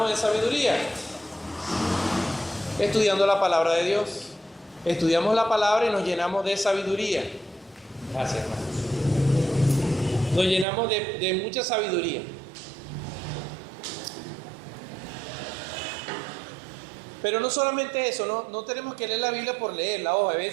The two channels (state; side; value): drops out; left; at 10.7 s